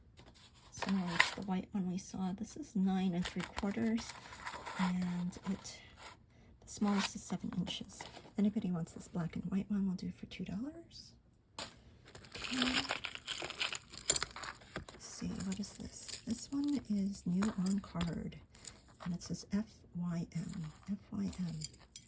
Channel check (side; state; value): both; identical; correlation 1.00